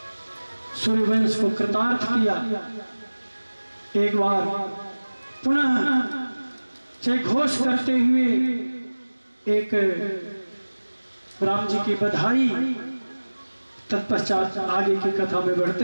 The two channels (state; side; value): inverted; both; correlation -1.00